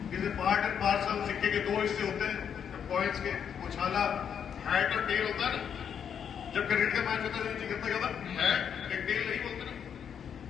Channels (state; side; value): quieter; right; 8.0 dB